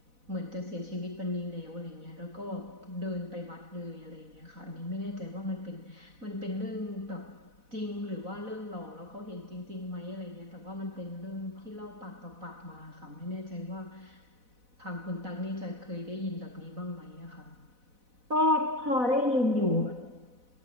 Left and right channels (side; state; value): left; late; 4.0 ms